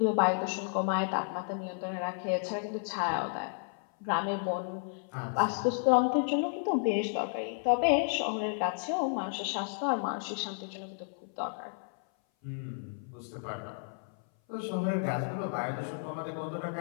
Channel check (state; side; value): silent; right; 56 dB below the other